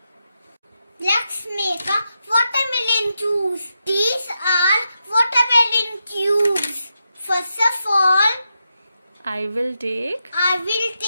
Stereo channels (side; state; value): both; inverted; correlation -0.86